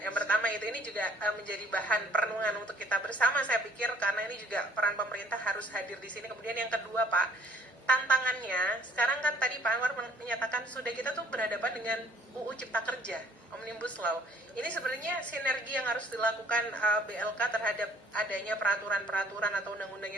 pertama itu ini juga menjadi bahan perenungan untuk kita bersama saya pikir, karena ini juga peran pemerintah harus hadir di sini. Kemudian yang kedua Pak, tantangannya sekarang kan tadi Pak Anwar menyatakan sudah kita tuh berhadapan dengan UU Cipta Kerja, Omnibus Law. Ini sebenarnya sinergi yang harus dilakukan BLK terhadap adanya peraturan-peraturan atau undang-undang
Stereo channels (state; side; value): normal; both; correlation 0.57